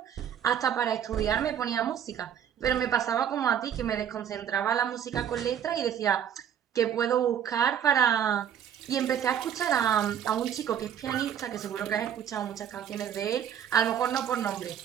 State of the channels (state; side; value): quieter; left; 9.2 dB